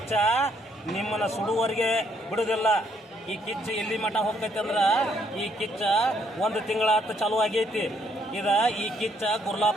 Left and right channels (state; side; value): normal; both; correlation 0.70